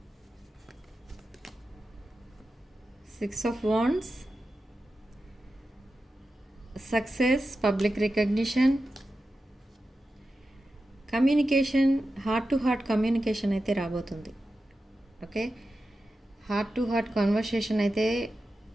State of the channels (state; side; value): normal; both; correlation 0.92